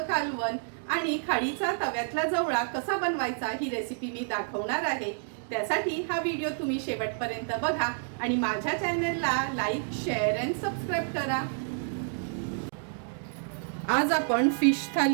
कालवण आणि खाडीचा तव्यातला जवळा कसा बनवायचा ही रेसिपी मी दाखवणार आहे। त्यासाठी हा व्हिडिओ तुम्ही शेवटपर्यंत बघा आणि माझ्या चॅनलला लाईक, शेअर अँड सबस्क्राइब करा। आज आपण फिश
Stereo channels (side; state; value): left; silent; digital silence